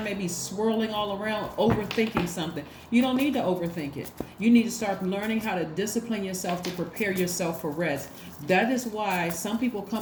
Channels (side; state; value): both; identical; correlation 1.00